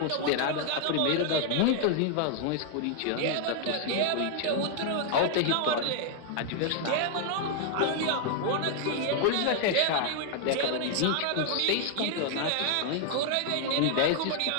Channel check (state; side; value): different; both; correlation 0.00